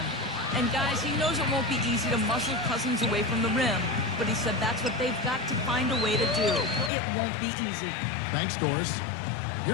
And guys, he knows it won't be easy to muscle Cousins away from the rim, but he said that's what they've got to find a way to do. It won't be easy. Thanks, Doris.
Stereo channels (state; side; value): drops out; right; at 6.9 s